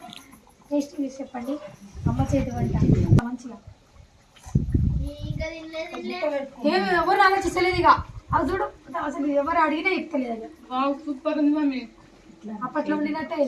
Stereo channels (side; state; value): both; identical; correlation 1.00